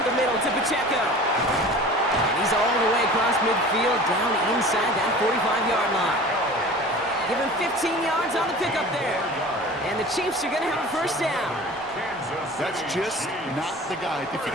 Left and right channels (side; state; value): both; normal; correlation 0.40